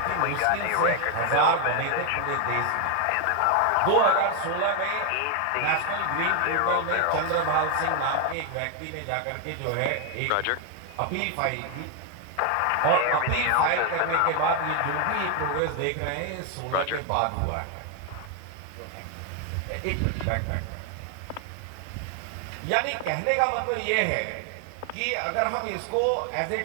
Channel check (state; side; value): different; both; correlation 0.00